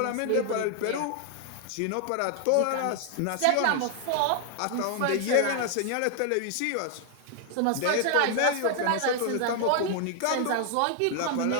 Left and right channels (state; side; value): different; both; correlation 0.00